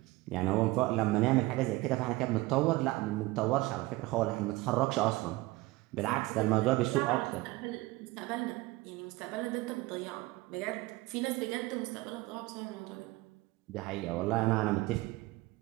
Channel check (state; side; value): quieter; left; 20.3 dB